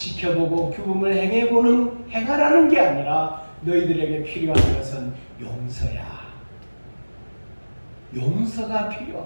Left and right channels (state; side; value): inverted; both; correlation -1.00